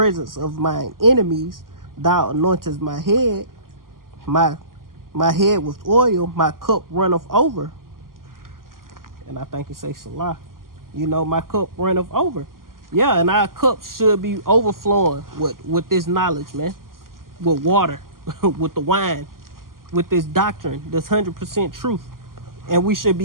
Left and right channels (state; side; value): late; left; 0.91 ms